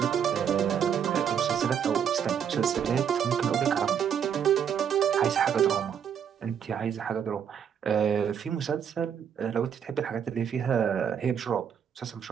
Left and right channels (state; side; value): quieter; left; 8.1 dB